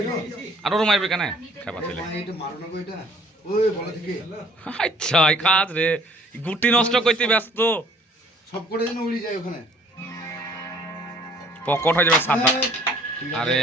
আরো মারবে কেন খাবা ছেলে আচ্ছা কাজ রে গুটি নষ্ট করতে ব্যস্ত সব করে যেন উড়ি যায় ওখানে পকট হয়ে যাবে সাদা আরে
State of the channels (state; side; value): normal; both; correlation 0.56